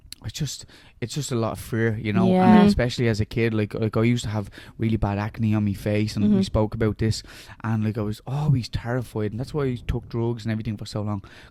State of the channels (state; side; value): identical; both; correlation 1.00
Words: it's just a lot of fear, you know, Yeah. and especially as a kid, like I used to have really bad acne on my face, and we spoke about this, and like I was always terrified, and that's why I took drugs and everything for so long,